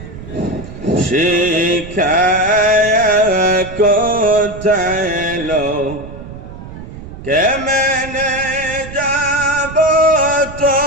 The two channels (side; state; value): right; noise; rumble, 13 dB below the sound